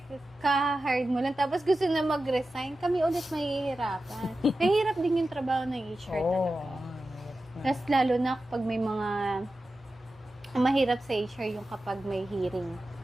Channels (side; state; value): both; normal; correlation 0.93